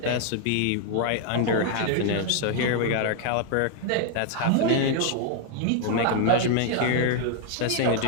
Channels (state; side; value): different; both; correlation 0.00